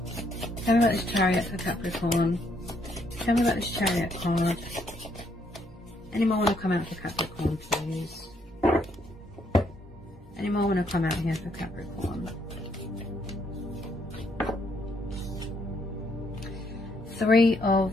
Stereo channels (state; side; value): normal; both; correlation 0.72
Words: Tell me about this Chariot for Capricorn. Tell me about this Chariot card. Any more want to come out for Capricorn, please? Any more want to come out here for Capricorn? Three